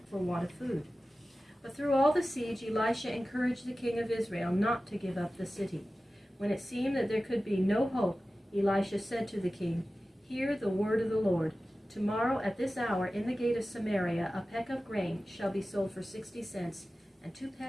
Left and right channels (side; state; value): both; normal; correlation 0.95